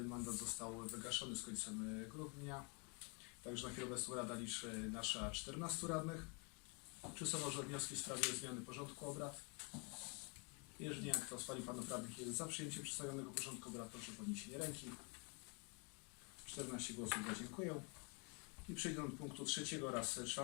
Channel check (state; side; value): quieter; right; 34.5 dB